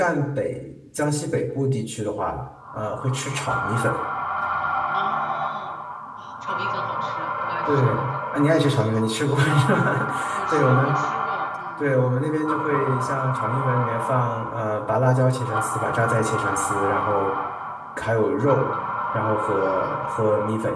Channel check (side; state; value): both; identical; correlation 1.00